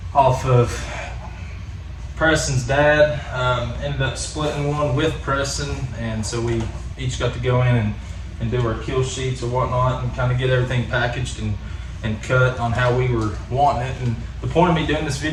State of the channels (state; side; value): identical; both; correlation 1.00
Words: off of Preston's dad. Ended up splitting one with Preston, and so we each got to go in and do our kill sheets or whatnot, and kind of get everything packaged and cut on how we were wanting it. And the point of me doing this